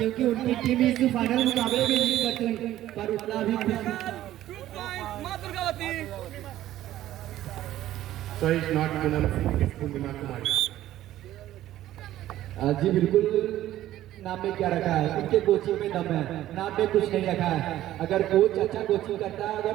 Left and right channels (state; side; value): quieter; left; 13.7 dB